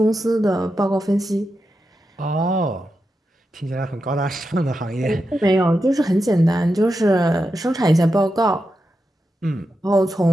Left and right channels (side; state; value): both; normal; correlation 0.88